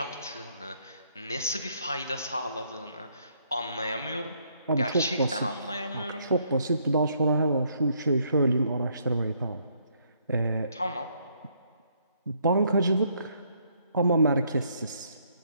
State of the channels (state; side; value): inverted; both; correlation -0.70